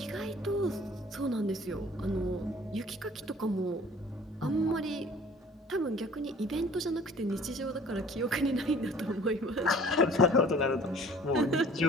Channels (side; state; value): both; normal; correlation 0.51